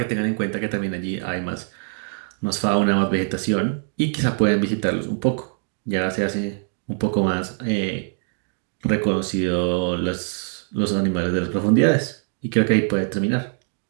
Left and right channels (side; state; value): left; silent; 60 dB below the other